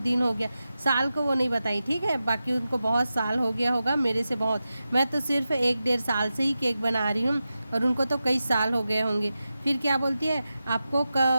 हो गया, साल को वो नहीं बताई, ठीक है, बाकी उनको बहुत साल हो गया होगा मेरे से बहुत, मैं तो सिर्फ 1-1.5 साल से ही केक बना रही हूँ और उनको तो कई साल हो गए होंगे। फिर क्या बोलती है आपको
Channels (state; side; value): inverted; both; correlation -0.92